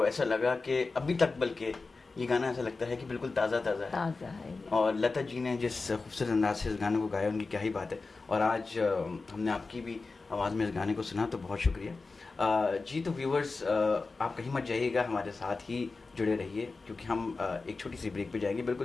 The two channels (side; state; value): right; quieter; 3.9 dB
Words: ऐसा लगा कि अभी तक, बल्कि ये गाना ऐसा लगता है कि बिल्कुल ताज़ा ताज़ा है। ताज़ा है। और लता जी ने जिस खूबसूरत अंदाज से इस गाने को गाया, उनकी क्या ही बात है। और आज हमने आपकी भी आवाज़ में इस गाने को सुना, तो बहुत शुक्रिया जी। तो व्यूवर्स, आप कहीं मत जाइएगा, हमारे साथ ही जुड़े रहिए, क्योंकि हम एक छोटी सी ब्रेक पे जाएंगे,